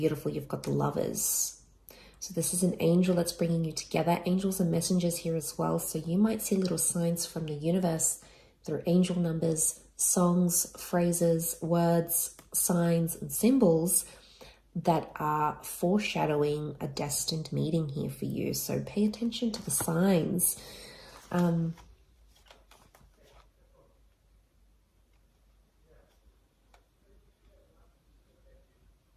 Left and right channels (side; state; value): both; identical; correlation 1.00